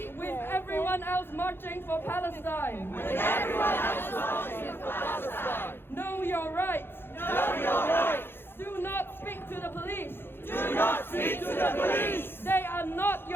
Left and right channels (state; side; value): late; right; 0.10 ms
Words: With everyone else marching for Palestine. Know your rights. Do not speak to the police. They are not